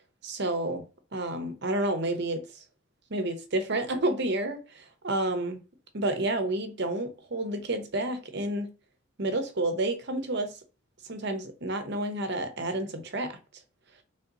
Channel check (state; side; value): normal; both; correlation 0.01